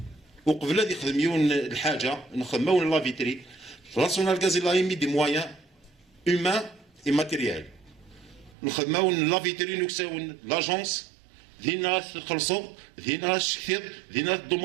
وقبل هذه يخدمون الحاجه نخدموا لا فيتري راسونال غاز لا يمي دي مويان هيومان اي ماتيريال نخدموا لا فيتري نكساون لاجونس ذي ناس خلصوا ذي ناس كثير ذي ناس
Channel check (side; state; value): left; drops out; at 8.6 s